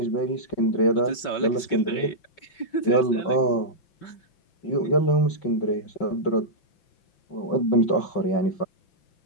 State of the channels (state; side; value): late; right; 5.3 ms